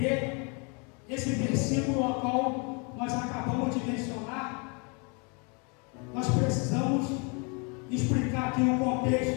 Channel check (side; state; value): right; quieter; 34.0 dB